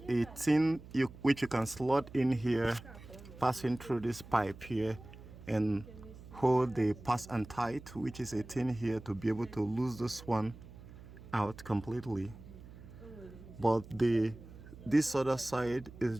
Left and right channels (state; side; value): noise; right; hum, 17 dB below the sound